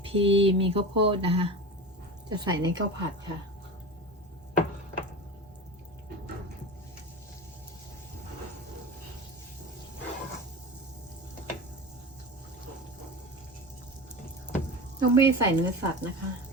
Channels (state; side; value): normal; both; correlation 0.29